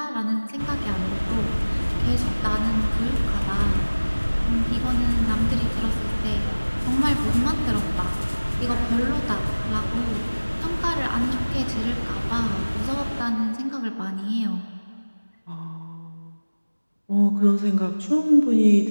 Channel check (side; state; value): both; inverted; correlation -1.00